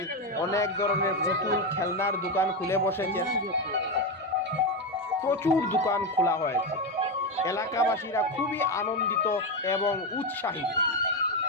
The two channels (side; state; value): both; normal; correlation 0.11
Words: অনেক ধরনের পুতুল খেলনার দোকান খুলে বসেছেন। প্রচুর দোকান খোলা হয়েছে। এলাকাবাসীরা খুবই আনন্দিত এবং উৎসাহিত।